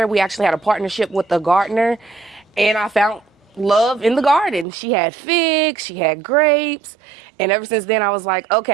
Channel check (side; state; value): left; drops out; at 4.7 s